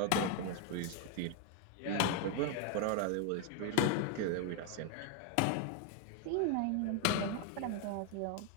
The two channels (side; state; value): both; different; correlation 0.01